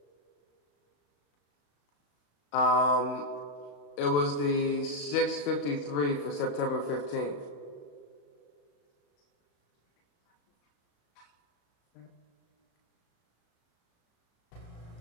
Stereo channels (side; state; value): right; late; 35 ms